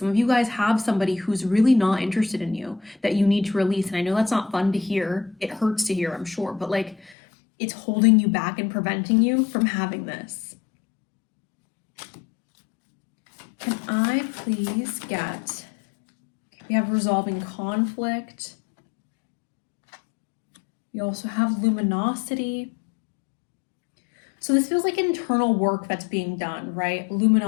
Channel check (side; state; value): right; drops out; at 7.2 s